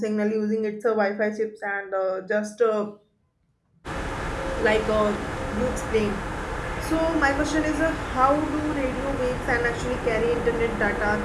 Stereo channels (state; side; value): identical; both; correlation 1.00